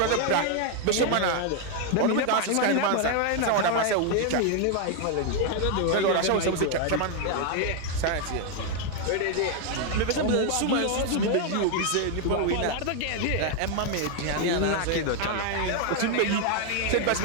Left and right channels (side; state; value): both; different; correlation 0.01